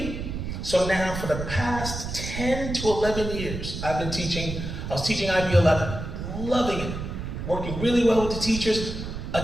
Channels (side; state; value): right; noise; rumble, 6 dB below the sound